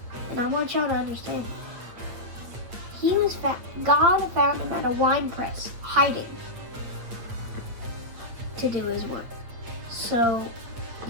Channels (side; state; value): left; late; 8.7 ms